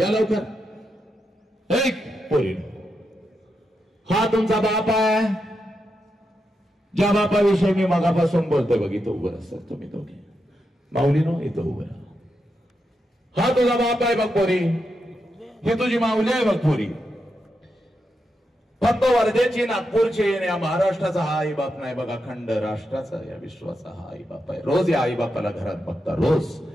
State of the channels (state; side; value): normal; both; correlation 0.85